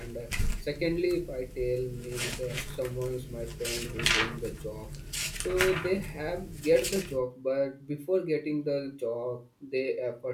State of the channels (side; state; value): both; identical; correlation 1.00